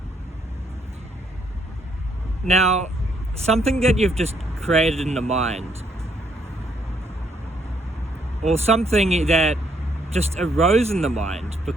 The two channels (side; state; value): both; normal; correlation 0.71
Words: Now, something that you've just created in the mind, or something that just arose in the mind